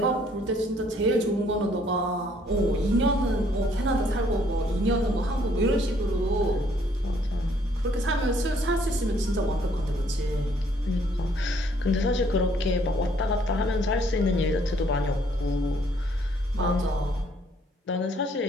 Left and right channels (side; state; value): both; normal; correlation 0.64